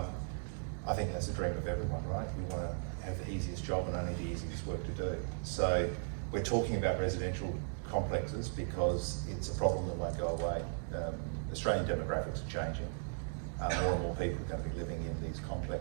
I think that's a dream of everyone, right? We want to have the easiest job and only the easiest work to do. So we're talking about residential complexes because it's a problem that won't go away. Australian demographics are changing. More and more people are going to be living in these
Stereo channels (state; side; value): silent; left; digital silence